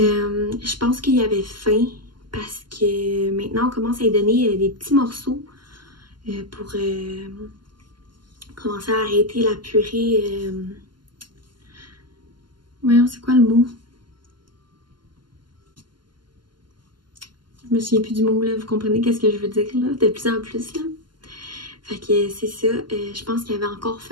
pense qu'il avait faim parce que maintenant on commence à lui donner des petits morceaux pour commencer à arrêter la purée. Voyons, c'est quoi le mot? Je me souviens plus du mot, là, vous comprenez qu'est-ce que je veux dire, là, de plus en plus, là. Fait que c'est ça, je pense qu'il avait encore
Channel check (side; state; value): left; late; 0.71 ms